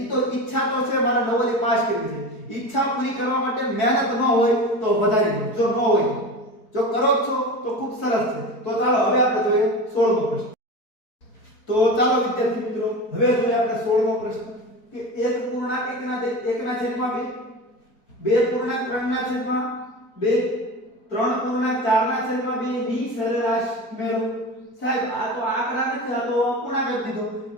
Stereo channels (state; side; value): late; right; 4.6 ms